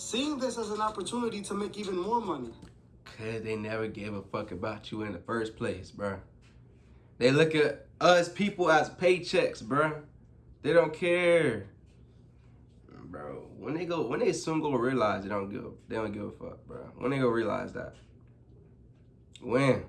this as an opportunity to make even more money. Cause they never gave a fuck about you in the first place, bro. They look at us people as paychecks, bro. They don't care, bro. When they soon go realize they don't give a fuck, bro. When they go realize that, when.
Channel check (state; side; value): identical; both; correlation 1.00